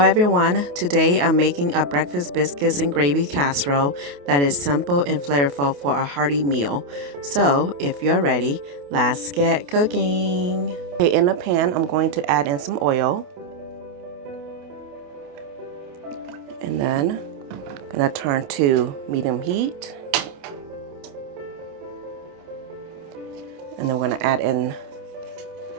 everyone, today I'm making a breakfast biscuits and gravy casserole that is simple and flavorful for a hearty meal. So if you're ready, let's get cooking. Okay, in a pan I'm going to add in some oil. And then I'm going to turn to medium heat. And then we're going to add in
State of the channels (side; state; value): left; late; 28 ms